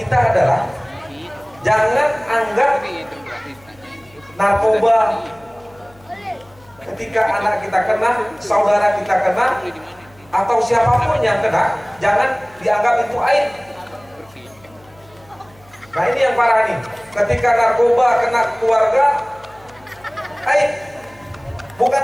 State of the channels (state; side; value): noise; left; hum, 28 dB below the sound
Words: adalah jangan anggap narkoba ketika anak kita kena, saudara kita kena, atau siapapun yang kena, jangan dianggap itu aib. Nah ini yang parah nih, ketika narkoba kena keluarga, aib. Bukan